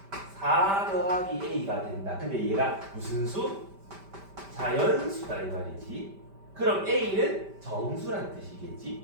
4 더하기 a가 된다. 근데 얘가 무슨 수? 자연수다 이 말이지. 그럼 a는 정수란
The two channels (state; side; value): late; left; 5.1 ms